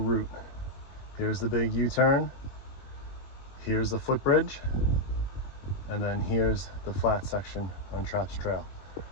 Here's the big U-turn, here's the footbridge, and then here's the flat section on Traps Trail.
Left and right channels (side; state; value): right; late; 21 ms